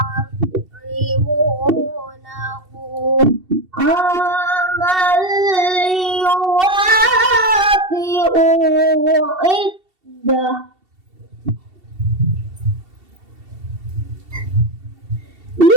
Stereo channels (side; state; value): left; late; 2.7 ms